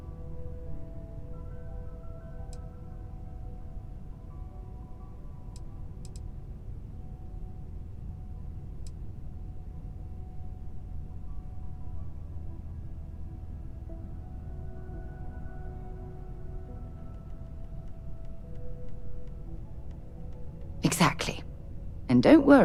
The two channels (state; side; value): identical; both; correlation 1.00